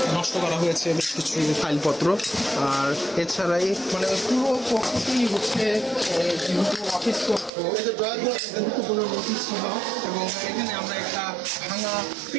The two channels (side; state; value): left; drops out; at 7.5 s